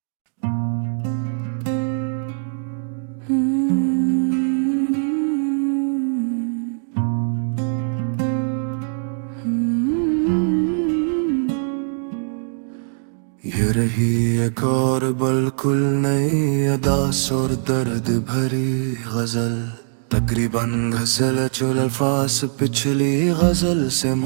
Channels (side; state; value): left; silent; digital silence